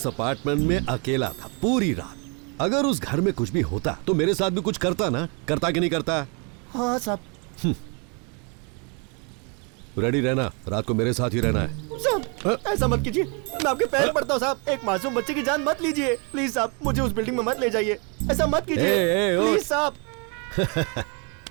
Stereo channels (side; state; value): left; quieter; 34.0 dB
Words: अपार्टमेंट में अकेला था पूरी रात। अगर उस घर में कुछ भी होता तो मेरे साथ भी कुछ करता ना, करता कि नहीं करता? हाँ साहब। रेडी रहना, रात को मेरे साथ ही रहना है। साहब ऐसा मत कीजिए, मैं आपके पैर पड़ता हूँ साहब, एक मासूम बच्चे की जान मत लीजिए प्लीज साहब, मुझे उस बिल्डिंग में मत ले जाइए, ऐसा मत कीजिए प्लीज साहब।